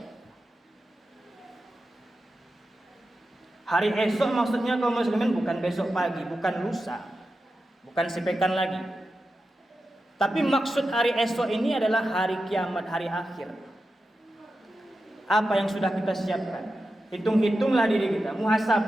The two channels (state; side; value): normal; both; correlation 0.91